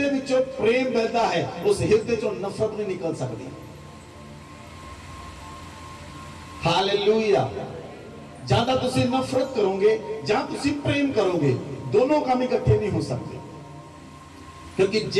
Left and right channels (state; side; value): identical; both; correlation 1.00